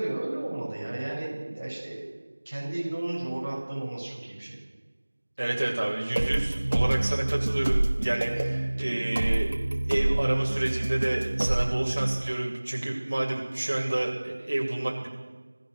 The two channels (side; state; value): both; inverted; correlation -1.00